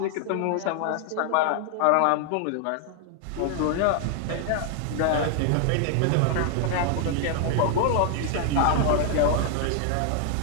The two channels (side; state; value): both; different; correlation 0.00